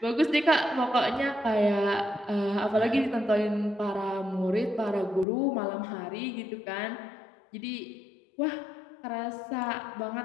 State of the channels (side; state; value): right; drops out; at 5.2 s